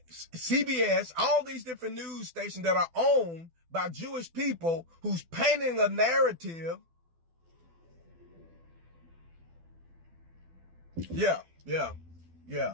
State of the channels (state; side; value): late; left; 12 ms